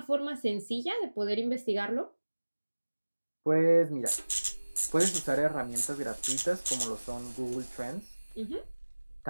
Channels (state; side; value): inverted; both; correlation -1.00